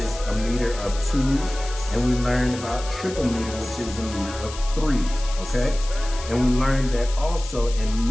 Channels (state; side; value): noise; left; hiss, 13 dB below the sound